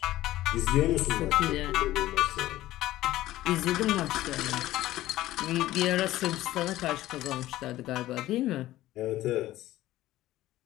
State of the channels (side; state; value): right; quieter; 15.4 dB